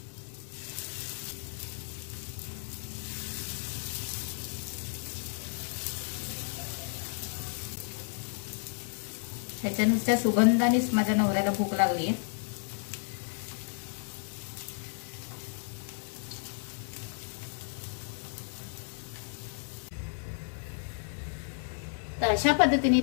ह्याच्या नुसत्या सुगंधानेच माझ्या नवऱ्याला भूक लागली आहे। तर अशा पद्धतीने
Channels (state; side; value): silent; right; 56 dB below the other